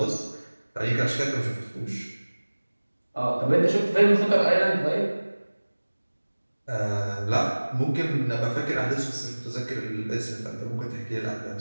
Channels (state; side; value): inverted; both; correlation -1.00